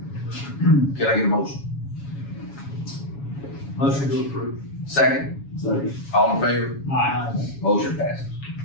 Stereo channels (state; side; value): late; right; 7.2 ms